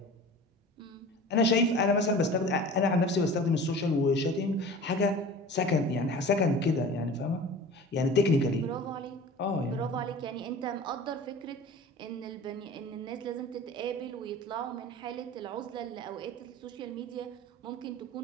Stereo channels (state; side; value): normal; both; correlation 0.39